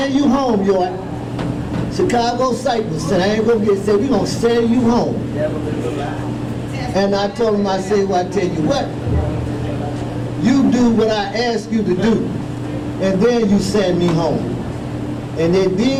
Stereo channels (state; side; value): identical; both; correlation 1.00